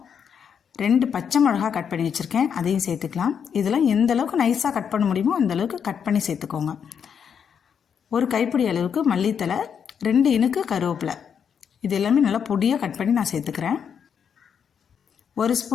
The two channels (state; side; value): quieter; right; 7.4 dB